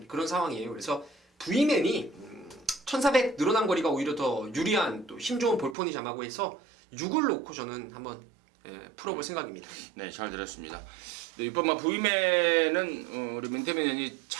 그런 상황이에요. 그래서 V맨이 1400 늘어난 거리가 오히려 더 유리한 또 힘 좋은 볼포니 자마고 해서 6을 놓고 저는 한번 풀어볼 생각입니다. 네, 잘 들었습니다. 네, 이번 V맨은 우리 민태민 의원이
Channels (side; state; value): left; drops out; at 5.8 s